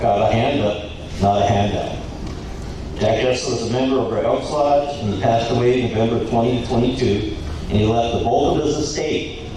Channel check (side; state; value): both; identical; correlation 1.00